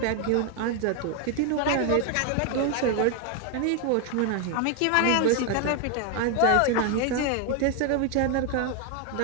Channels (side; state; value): both; different; correlation 0.01